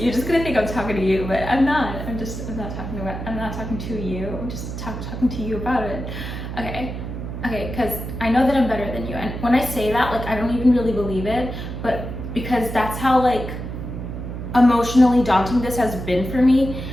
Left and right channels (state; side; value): noise; right; hum, 7 dB below the sound